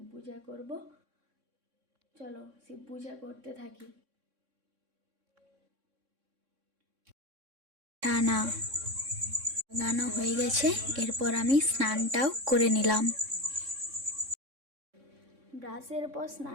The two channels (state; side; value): late; left; 3.6 ms